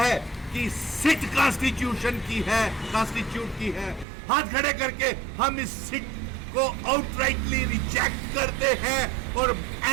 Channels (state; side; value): drops out; left; at 4.0 s